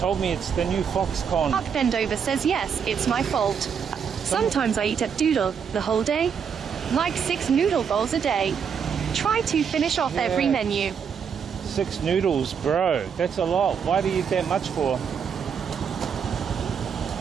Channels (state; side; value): quieter; left; 7.0 dB